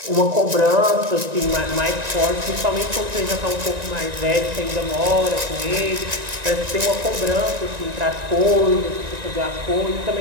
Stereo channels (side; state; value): left; late; 1.9 ms